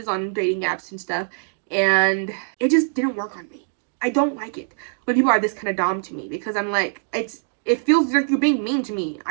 on dating apps and stuff, and it just didn't work on me. I don't like it when people are this kind of dom to me because I'm like, it feels like you're being mean to me.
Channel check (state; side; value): silent; left; digital silence